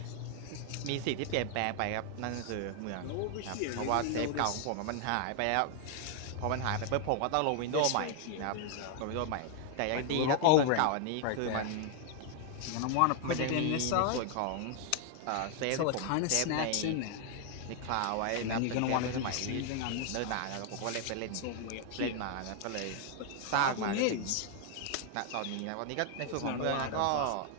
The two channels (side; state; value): both; different; correlation 0.00